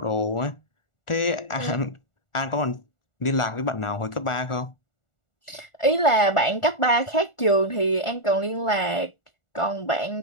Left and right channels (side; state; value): right; late; 1.4 ms